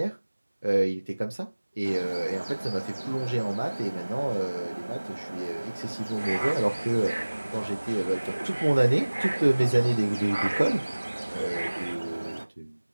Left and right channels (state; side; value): inverted; both; correlation -1.00